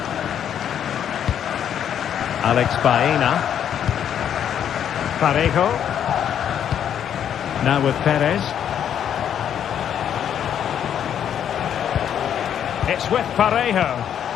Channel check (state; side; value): quieter; right; 9.3 dB